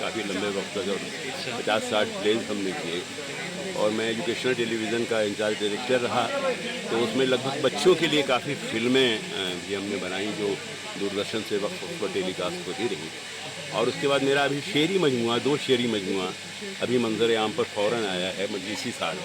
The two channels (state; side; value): identical; both; correlation 1.00